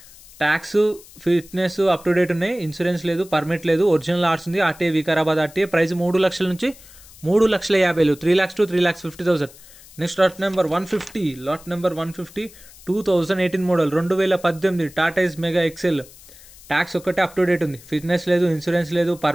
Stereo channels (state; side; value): noise; left; hiss, 21 dB below the sound